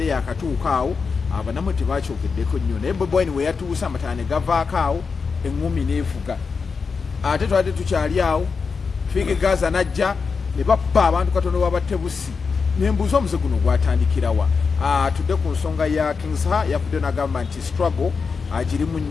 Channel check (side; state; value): right; quieter; 5.2 dB